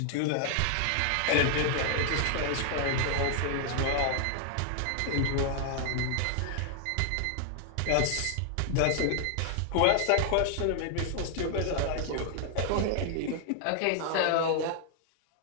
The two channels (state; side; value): different; both; correlation 0.00